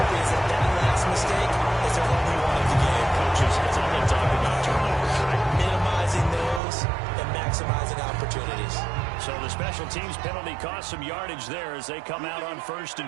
is that last mistake is their only one of the game. Coaches, that's all they talk about, turnovers, right? Minimizing those and maximizing opportunities. So the special teams penalty cost some yardage there as they come out on 1st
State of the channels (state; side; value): drops out; left; at 6.6 s